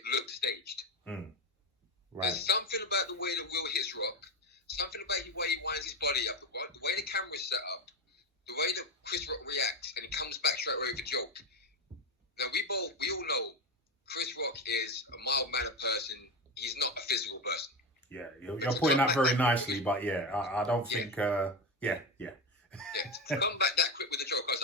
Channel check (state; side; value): normal; both; correlation 0.16